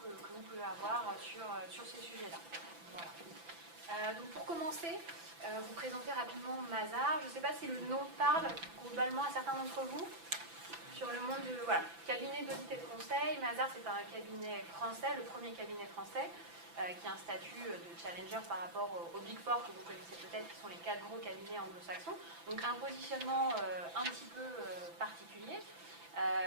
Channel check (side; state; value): left; late; 6.0 ms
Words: vous pouvez avoir sur ces sujets-là. Voilà. Donc pour commencer, vous présenter rapidement Mazars. Je ne sais pas si le nom parle globalement à certains d'entre vous. Sur le monde de cabinet d'audit et de conseil, Mazars c'est un cabinet français, le premier cabinet français, qui a un statut de challenger par rapport aux Big Four que vous connaissez peut-être, qui sont les 4 gros cabinets anglo-saxons. Donc un positionnement un petit peu particulier,